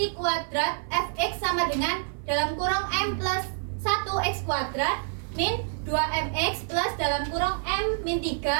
kuadrat fx sama dengan dalam kurung M plus 1x kuadrat min 2mx plus dalam kurung M min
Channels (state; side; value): silent; left; 56 dB below the other